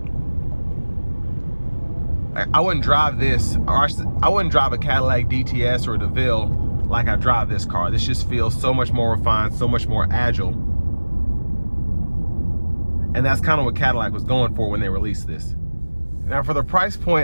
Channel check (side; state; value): both; inverted; correlation -1.00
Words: I wouldn't drive this, or I wouldn't drive a Cadillac DTS or a DeVille like I drive this car. This just feels so much more refined, so much more agile. And that's kind of what Cadillac was going for when they released this. Now, for the price